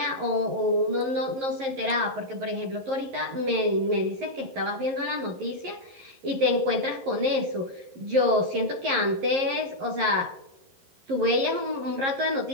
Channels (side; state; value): left; late; 11 ms